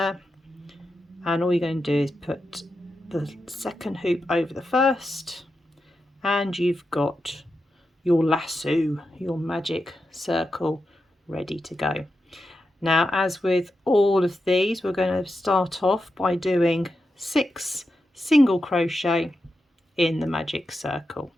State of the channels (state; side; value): normal; both; correlation 0.89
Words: and all you're going to do is put the second hoop over the first, and you've got your lasso, your magic circle, ready to go. Now, as with all of these, we're going to start off by doing 6 single crochet in the magic circle.